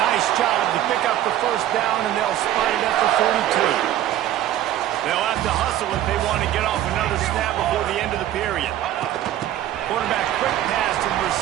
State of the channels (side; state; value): left; quieter; 12.6 dB